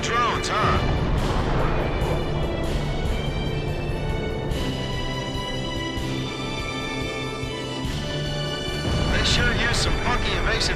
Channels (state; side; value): identical; both; correlation 1.00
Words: drones, huh? They sure use some funky